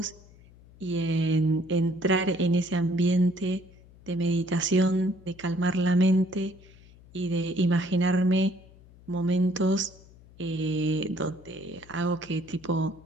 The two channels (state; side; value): noise; left; hum, 24 dB below the sound